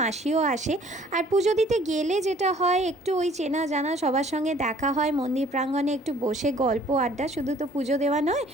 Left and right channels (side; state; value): both; normal; correlation 0.56